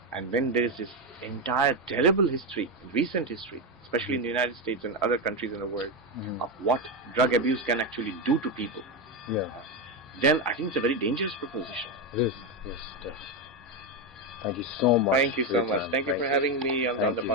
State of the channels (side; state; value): both; normal; correlation 0.10